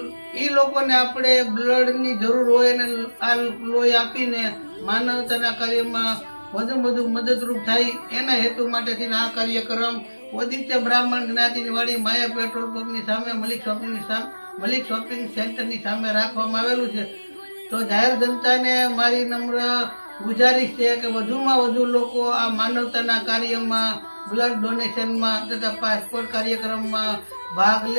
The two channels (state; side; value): inverted; both; correlation -1.00